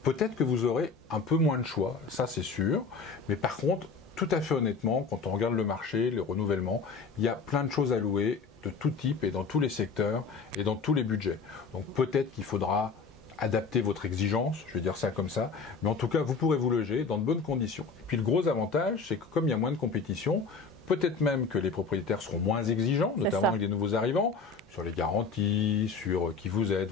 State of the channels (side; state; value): right; quieter; 4.7 dB